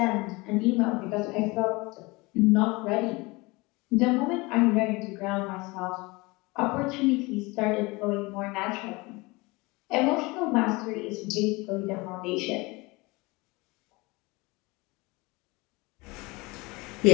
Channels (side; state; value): right; quieter; 24.2 dB